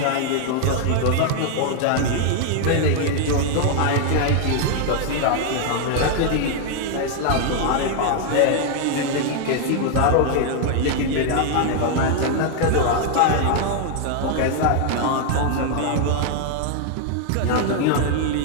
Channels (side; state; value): both; different; correlation 0.00